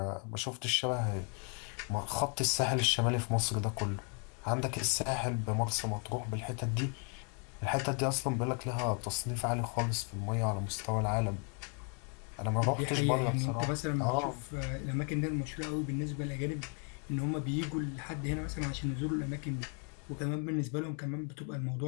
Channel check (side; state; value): right; quieter; 39.4 dB